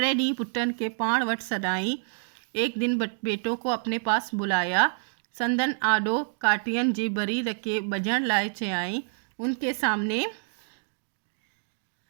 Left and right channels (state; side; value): silent; left; digital silence